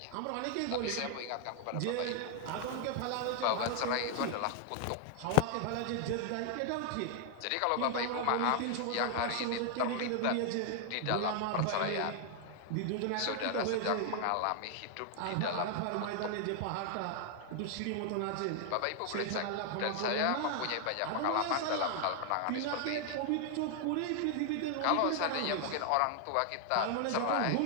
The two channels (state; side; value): different; both; correlation 0.00